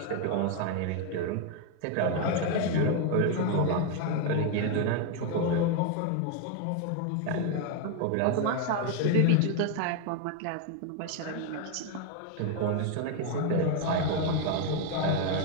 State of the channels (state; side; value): different; both; correlation 0.01